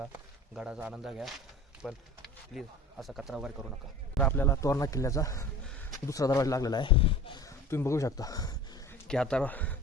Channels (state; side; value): normal; both; correlation 0.39